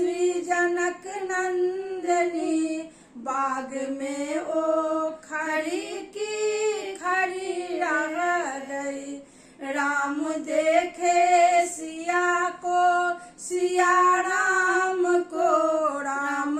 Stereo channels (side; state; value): both; identical; correlation 1.00